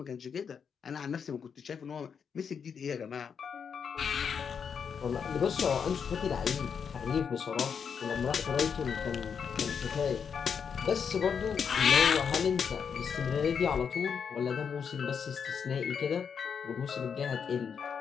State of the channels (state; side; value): quieter; right; 6.7 dB